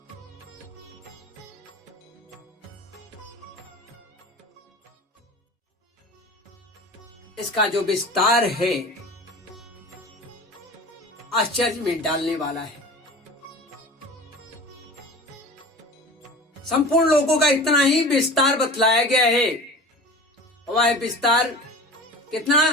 इसका जो विस्तार है आश्चर्य में डालने वाला है। संपूर्ण लोगों का इतना ही विस्तार बतलाया गया है। वह विस्तार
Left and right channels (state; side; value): normal; both; correlation 0.36